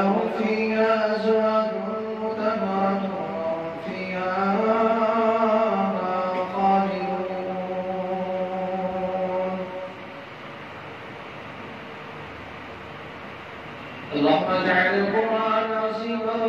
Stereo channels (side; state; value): both; identical; correlation 1.00